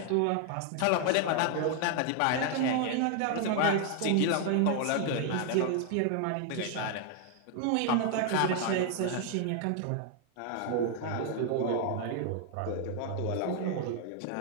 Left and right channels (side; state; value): both; different; correlation 0.00